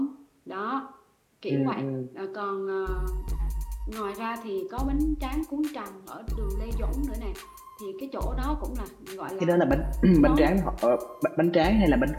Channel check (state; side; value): identical; both; correlation 1.00